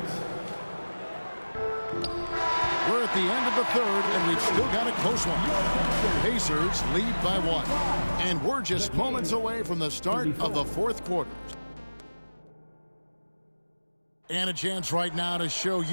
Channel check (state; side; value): inverted; both; correlation -1.00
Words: We're at the end of the third, and we've still got a close one. Pacers lead by 1. And we're just moments away from the start of the fourth quarter. And a chance right now to show